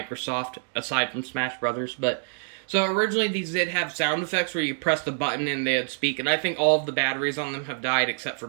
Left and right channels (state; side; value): silent; left; digital silence